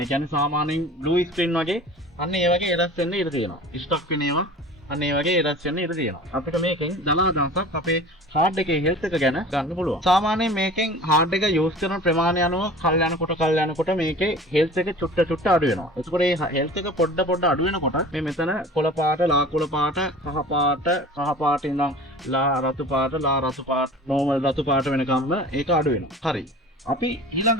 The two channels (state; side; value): normal; both; correlation 0.41